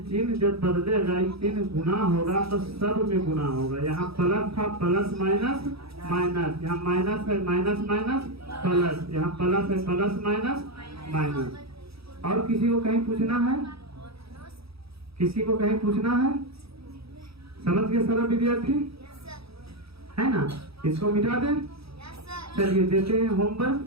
चिन्ह जब बदलेगा, ये चिन्ह गुना होगा तो सब में गुना होगा। यहाँ प्लस था, प्लस माइनस माइनस, यहाँ माइनस है, माइनस माइनस प्लस, यहाँ प्लस है, प्लस माइनस माइनस। और किसी को कहीं पूछना है? किसी को कहीं पूछना है? समझ गए सारा विद्यार्थी? है ना? इसको मिटा दें। चलिए देते हैं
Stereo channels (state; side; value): late; left; 0.77 ms